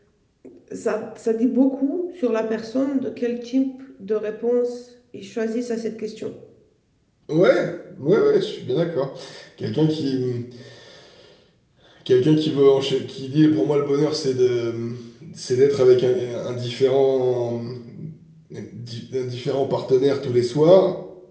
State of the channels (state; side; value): identical; both; correlation 1.00